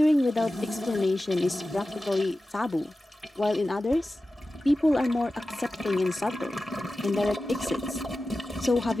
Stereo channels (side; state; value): both; normal; correlation 0.94